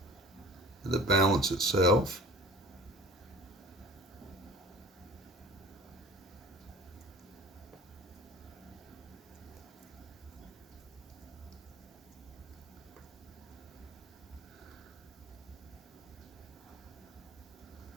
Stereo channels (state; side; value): normal; both; correlation 0.44